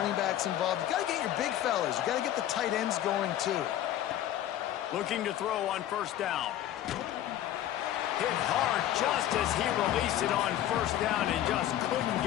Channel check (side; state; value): right; quieter; 12.2 dB